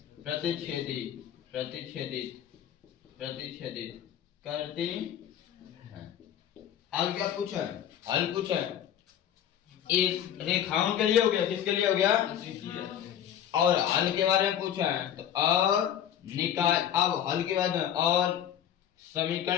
प्रतिच्छेदित करती हैं। अब क्या पूछा है, हल पूछा है, इस रेखाओं के लिए हो गया, किसके लिए हो गया और हल के बारे में पूछा है, तो अब हल के बाद में और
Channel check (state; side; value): quieter; right; 10.0 dB